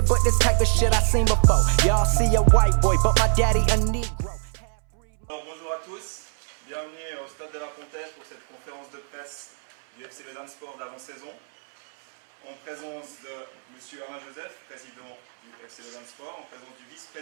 but this type of shit I seen before. Y'all see a white boy, but my daddy a Negro. Alors bonjour à tous, bienvenue au Stade de la Pontaise pour cette conférence de presse du FC Lausanne Sport d'avant-saison. En présence de M. Alain Joseph, président du FC Lausanne Sport, en présence du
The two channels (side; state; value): left; silent; 62 dB below the other